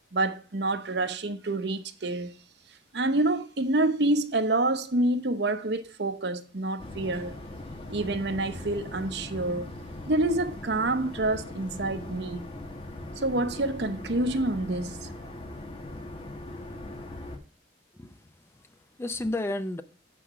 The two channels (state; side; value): normal; both; correlation 0.21